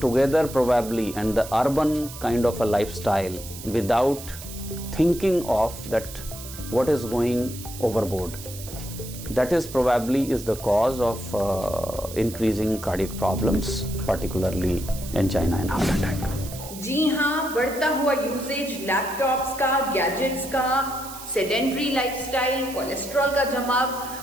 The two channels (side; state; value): right; noise; hiss, 13 dB below the sound